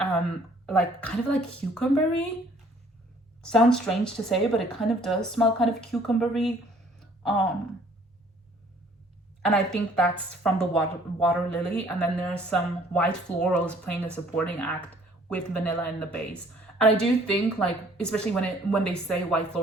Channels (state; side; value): normal; both; correlation 0.58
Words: like kind of like cucumbery. Sounds strange to say, but it kind of does smell kind of cucumbery. And I think that's from the water lily. And then there's some white florals playing a supporting act with vanilla in the base. And I do think, like, especially when they say white